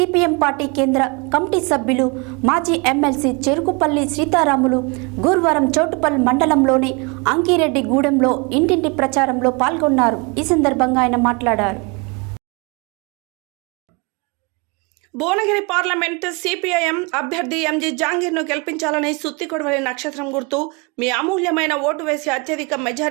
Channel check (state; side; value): quieter; left; 30.0 dB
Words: పార్టీ కేంద్ర కమిటీ సభ్యులు మాజీ ఎమ్మెల్సీ చెరుకుపల్లి సీతారాములు గురువారం చోటుపల్లి మండలంలోని అంకిరెడ్డి గూడెంలో ఇంటింటి ప్రచారంలో పాల్గొన్నారు. ఈ సందర్భంగా ఆయన మాట్లాడారు. భువనగిరి పార్లమెంట్ సిపిఐఎం అభ్యర్థి ఎంజీ జహాంగీర్ను గెలిపించాలని, సుత్తికొడవలి నక్షత్రం గుర్తు మీ అమూల్యమైన ఓటు వేసి అత్యధిక